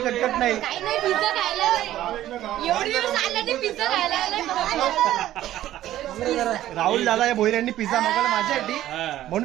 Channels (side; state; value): left; quieter; 13.5 dB